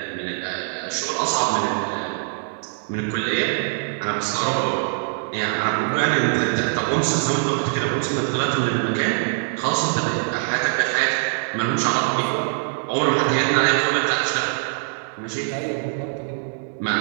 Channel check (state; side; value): silent; left; digital silence